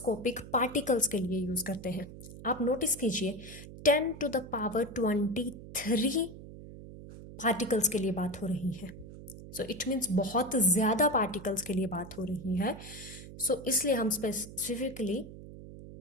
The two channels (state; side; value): noise; right; hum, 14 dB below the sound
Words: पार्टिकल्स के लिए यूज करते हैं। आप नोटिस कीजिए 10⁻23 पार्टिकल्स के लिए बात हो रही है। सो इट मीन्स बहुत ज़्यादा पार्टिकल्स के लिए बात हो रही है। सो इसलिए हम स्पेसिफिकली